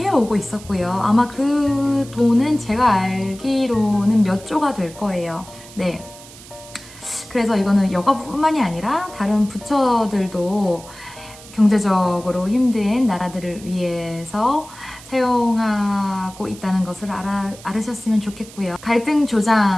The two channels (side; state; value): right; noise; hiss, 19 dB below the sound